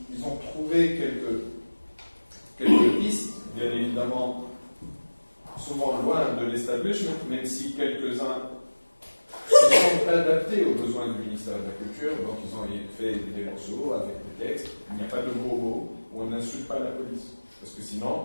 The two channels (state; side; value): inverted; both; correlation -1.00